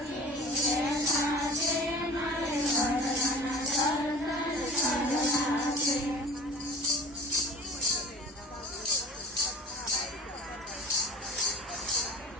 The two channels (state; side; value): normal; both; correlation 0.39